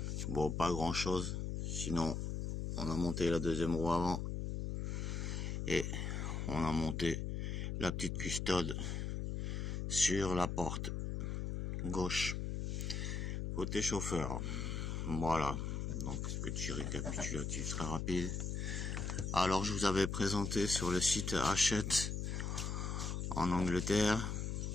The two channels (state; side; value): noise; left; hum, 2 dB below the sound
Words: Bon, pas grand chose, sinon on a monté la deuxième roue avant et on a monté la petite custode sur la porte gauche côté chauffeur. Voilà, donc petit récapitulatif très rapide. Alors je vous avais présenté sur le site Hachette en Angleterre,